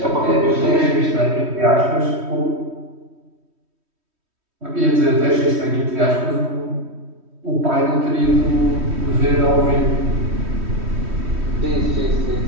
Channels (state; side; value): late; left; 3.1 ms